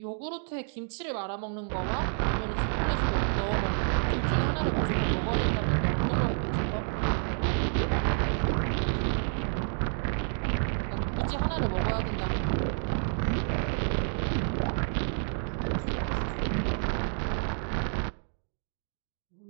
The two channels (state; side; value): silent; left; 57 dB below the other